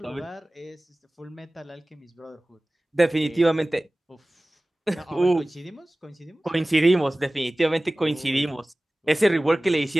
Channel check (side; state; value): both; normal; correlation 0.98